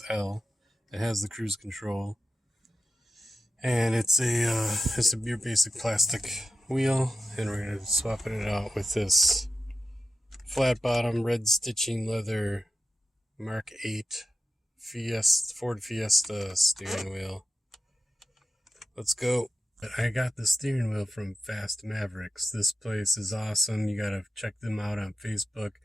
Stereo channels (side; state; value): both; normal; correlation 0.90